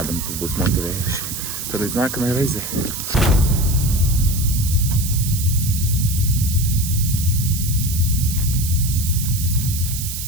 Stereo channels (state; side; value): noise; right; hiss, 6 dB below the sound